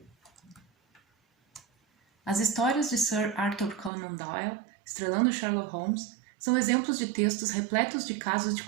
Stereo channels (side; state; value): left; drops out; at 3.9 s